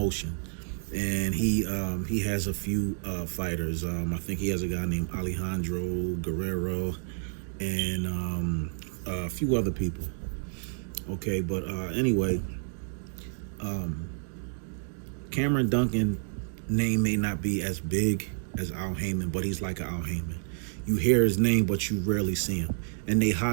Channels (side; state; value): left; silent; digital silence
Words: and he has a few fighters. I think he has a guy named Alejandro Guerrero and a few other people. Okay, but anyway, Cameron Duncan name may not be as big as Al Heyman, but he's like an Al Heyman. You hear his name, but you rarely see him, and they